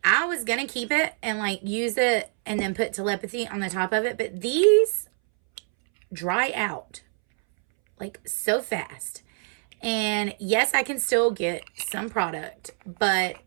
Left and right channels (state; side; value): silent; left; 62 dB below the other